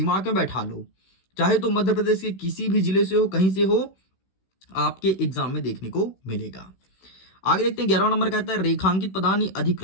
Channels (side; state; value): right; late; 16 ms